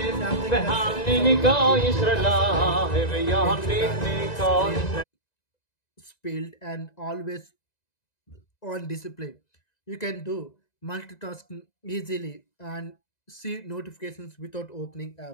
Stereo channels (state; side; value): late; right; 1.9 ms